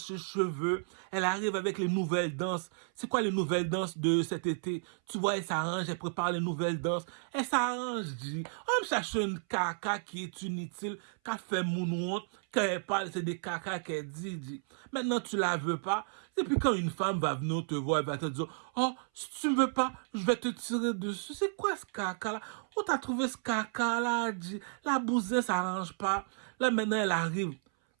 cheveux, elle arrive avec les nouvelles danses. C'est quoi les nouvelles danses de cet été? Tu vois, elle s'arrange, elle prépare les nouvelles danses. Elle s'arrange, dit. On me cherche une caca qui est inutile, qui a fait moonwalk, quand elle parle, c'est des caca qu'elle dit. Maintenant, tu la veux pas. Et puis quand une femme va venir te voir, elle va te dire, oh, si tu me veux pas, je vais te tirer dessus. C'est quoi ce caca-là? Où t'as trouvé ce caca-là, dit? La bousin s'arrange pas. Là, maintenant, elle arrive. Tu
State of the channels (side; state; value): left; silent; 56 dB below the other